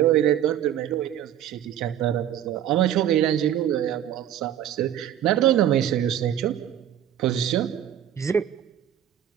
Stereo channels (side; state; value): left; quieter; 10.7 dB